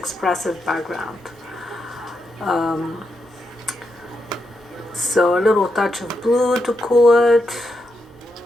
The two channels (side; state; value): both; normal; correlation 0.84